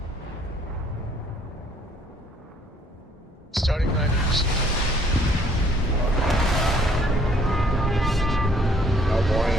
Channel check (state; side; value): normal; both; correlation 0.62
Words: Starting line received. How boring